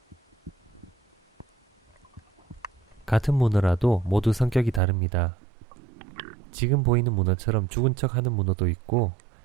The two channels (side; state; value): left; drops out; at 4.8 s